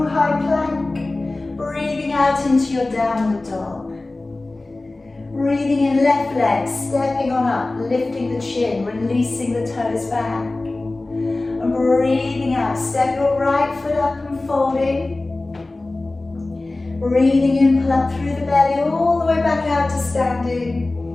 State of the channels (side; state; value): right; quieter; 3.0 dB